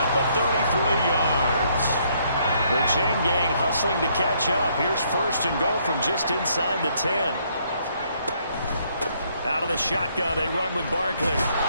of 33 yards. The chain gang hustling to catch up. Here's 1st and goal from just inside the 10. Out of the shotgun, they run with Barkley.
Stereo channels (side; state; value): both; inverted; correlation -0.69